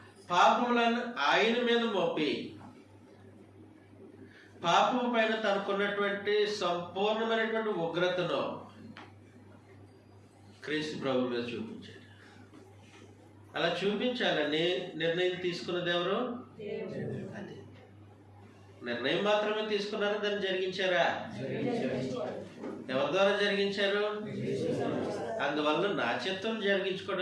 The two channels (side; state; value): both; identical; correlation 1.00